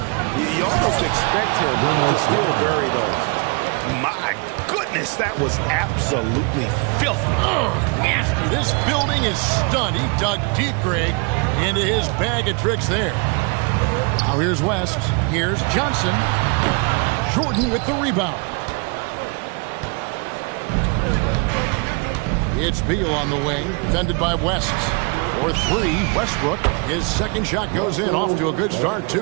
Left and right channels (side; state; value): left; quieter; 32.6 dB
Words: you almost expect him to still bury those. My goodness, that was absolutely filthy. Nasty. This building is stunned. He dug deep, Greg, into his bag of tricks there. Now here's West. Here's Johnson. Jordan with the rebound. It's Beal on the wing, defended by West. For three, Westbrook. His second shot goes in, off to a good start,